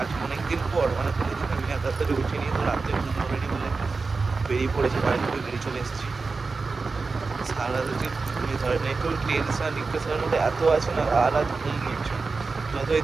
অনেকদিন পর, মানে কোনোদিন আমি রাত্রে উঠিনি, তো রাত্রে ঘুম অলরেডি বলে বেরিয়ে পড়েছি, বাড়ি থেকে বেরিয়ে চলে এসেছি। সারা রাত যে ঘুমিয়ে ধরে না, একটু টেনশন ডিপ্রেশনের মধ্যে এত আছে না, সারা রাত ঘুম হচ্ছে। যতই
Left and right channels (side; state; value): left; quieter; 4.2 dB